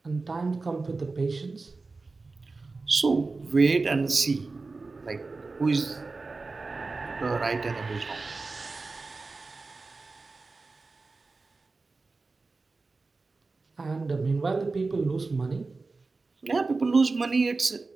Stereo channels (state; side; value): quieter; left; 3.8 dB